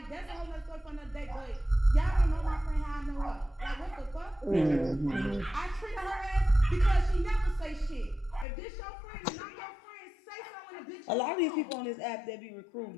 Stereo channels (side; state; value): right; drops out; at 8.5 s